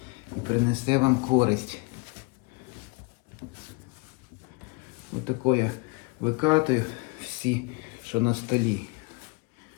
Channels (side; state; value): right; quieter; 28.1 dB